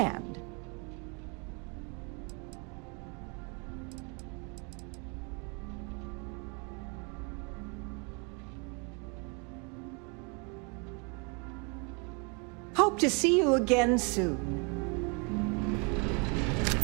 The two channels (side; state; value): left; quieter; 33.5 dB